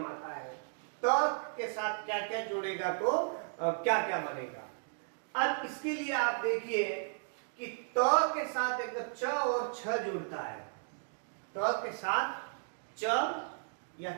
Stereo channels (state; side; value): silent; left; digital silence